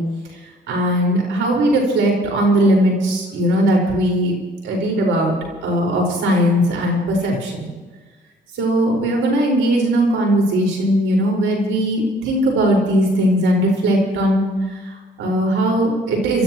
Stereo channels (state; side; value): normal; both; correlation 0.57